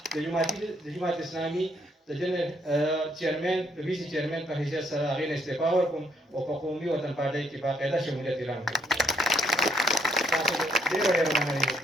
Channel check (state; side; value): normal; both; correlation 0.71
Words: د جماعت اسلامي د جنرال چیرمن د ویسي چیرمن په حیثیت سره هغې نه استعفا ورکوم او په قومي وطن پارټۍ کې باقاعده شمولیت اعلان کړم. تاسو ډېره